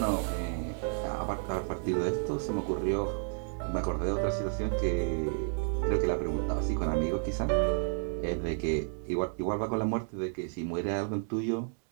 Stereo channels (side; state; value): left; silent; 57 dB below the other